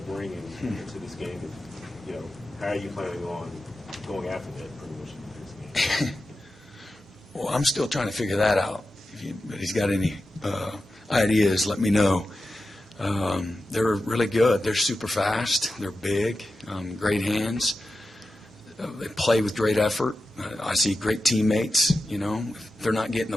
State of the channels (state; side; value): normal; both; correlation 0.92